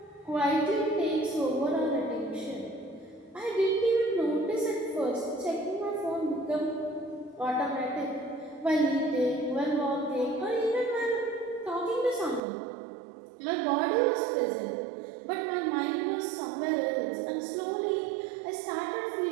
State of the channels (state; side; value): drops out; left; at 12.4 s